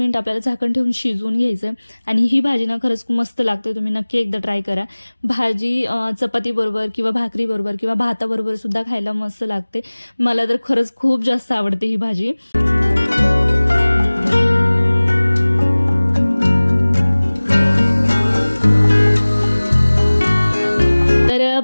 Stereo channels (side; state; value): both; inverted; correlation -1.00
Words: आपल्याला झाकण ठेवून शिजवून घ्यायचं आणि ही भाजी ना खरंच मस्त लागते, तुम्ही नक्की एकदा ट्राय करा। भाजी चपाती बरोबर किंवा भाकरी बरोबर किंवा भाताबरोबर सुद्धा खायला मस्त लागते, मला तर खरंच खूप जास्त आवडते ही भाजी। तर